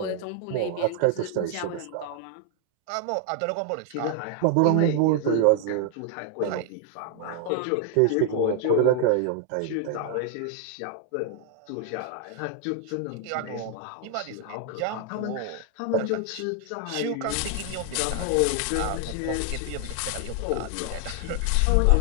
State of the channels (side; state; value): both; different; correlation 0.00